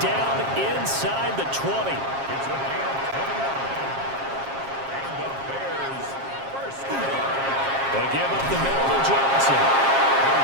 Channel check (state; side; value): late; left; 7.4 ms